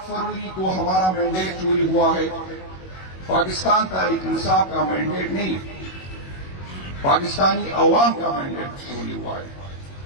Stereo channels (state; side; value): late; right; 21 ms